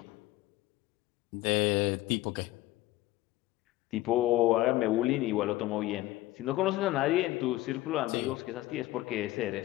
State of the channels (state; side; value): quieter; right; 16.9 dB